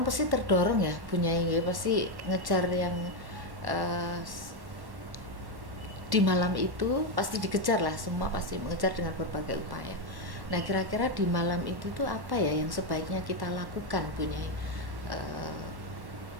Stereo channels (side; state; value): left; late; 1.1 ms